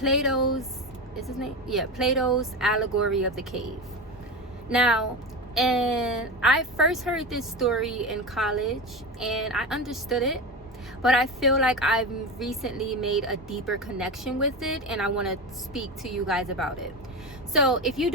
allegory of the cave. Now, and I first heard this story in college and I understood it, but I feel like I've recently made a deeper connection with it and I want to speak to you guys about it. So if you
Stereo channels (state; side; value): normal; both; correlation 0.22